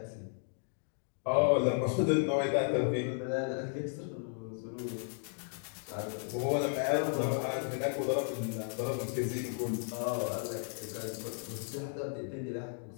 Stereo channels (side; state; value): right; silent; 55 dB below the other